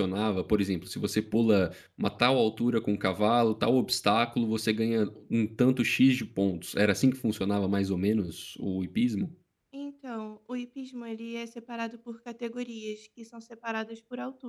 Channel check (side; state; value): both; identical; correlation 1.00